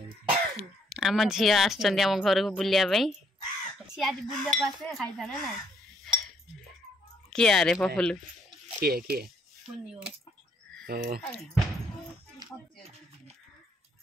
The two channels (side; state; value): both; normal; correlation 0.69